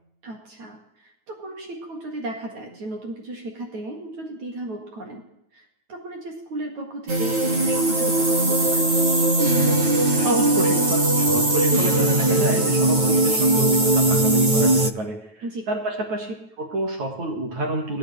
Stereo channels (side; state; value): left; late; 9.2 ms